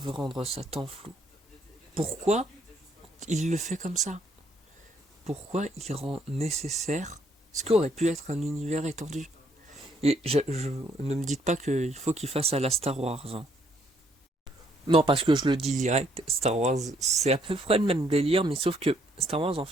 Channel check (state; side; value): normal; both; correlation 0.69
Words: rendre ça tant flou, pourquoi il le fait comme ça? Pourquoi il rend nécessaire ce qu'aurait pu être un univers étendu? Et ne me dites pas qu'il faut qu'il fasse à la Star Wars. Hein. Non, parce que je le dis direct, Star Wars, c'est à peu près le même délire, mais sauf que Star Wars, en